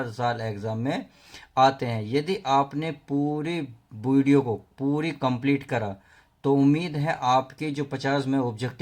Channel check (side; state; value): both; identical; correlation 1.00